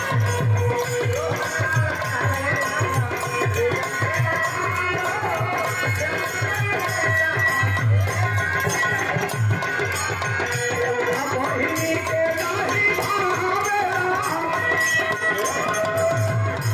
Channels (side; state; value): both; identical; correlation 1.00